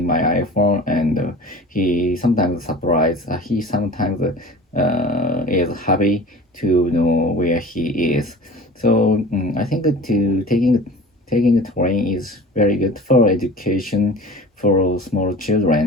my iPhone, and he sometimes surprised. He sometimes is happy to know where he is. So I think that taking a train is very good for education for small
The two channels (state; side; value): normal; both; correlation 0.40